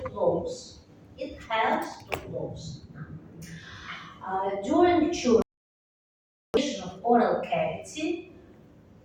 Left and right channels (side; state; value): both; identical; correlation 1.00